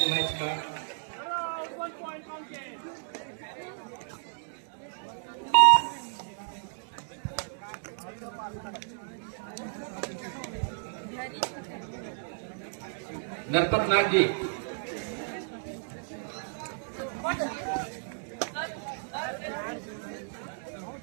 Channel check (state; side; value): silent; left; digital silence